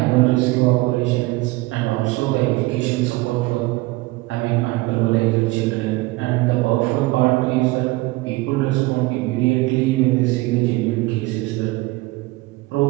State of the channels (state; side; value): quieter; left; 21.3 dB